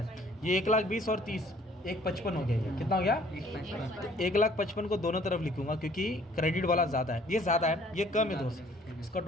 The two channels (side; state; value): both; normal; correlation 0.58